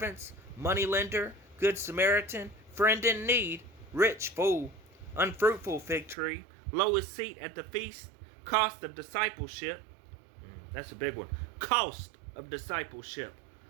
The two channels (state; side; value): drops out; left; at 6.2 s